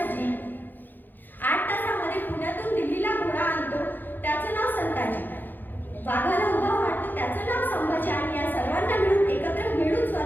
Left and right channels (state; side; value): late; right; 0.089 ms